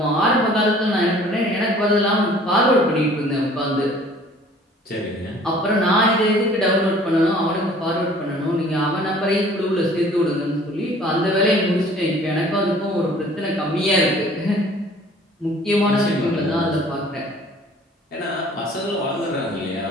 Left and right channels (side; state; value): both; normal; correlation 0.52